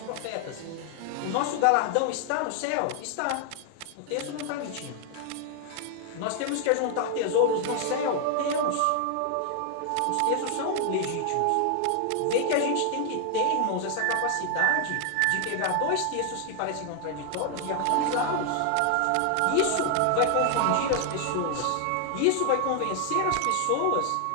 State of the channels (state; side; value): different; both; correlation 0.00